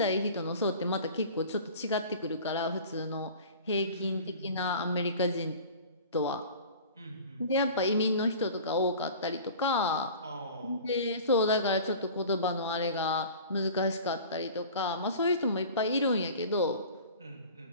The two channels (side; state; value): both; inverted; correlation -0.41